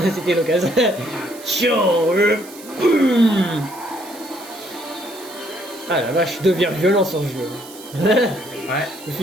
C'était l'occasion. Tiens, boum. Ah la vache, je deviens violent sur ce jeu. Ouais. Je vais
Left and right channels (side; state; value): right; noise; hiss, 18 dB below the sound